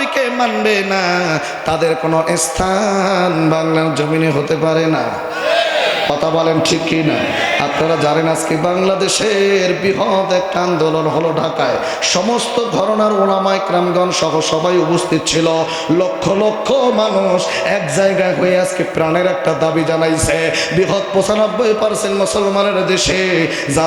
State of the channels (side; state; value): both; identical; correlation 1.00